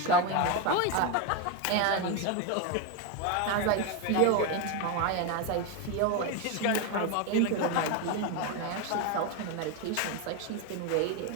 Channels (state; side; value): different; both; correlation 0.03